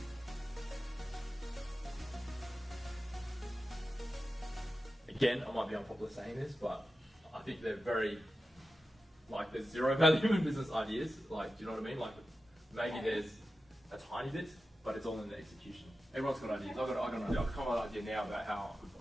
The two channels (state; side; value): normal; both; correlation 0.92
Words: Again, I might be unpopular saying this, but I think they're very, there's zero value in business ideas. Like, do you know what I mean? Like, maybe there's a tiny bit, but it's all in the execution. Everyone's got ideas. I've got an idea. I've come up with an idea now about how I could